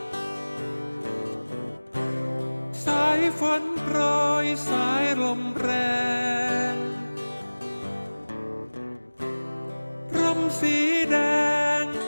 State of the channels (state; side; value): inverted; both; correlation -1.00